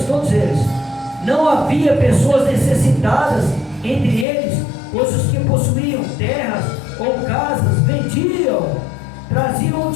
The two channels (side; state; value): right; drops out; at 4.2 s